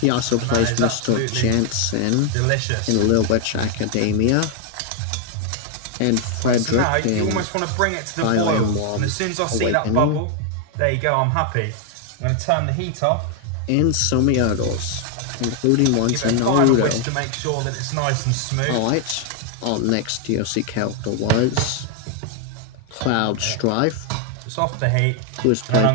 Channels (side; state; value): both; different; correlation 0.00